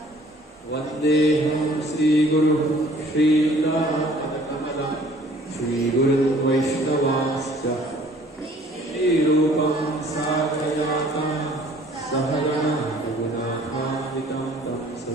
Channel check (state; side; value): normal; both; correlation 0.54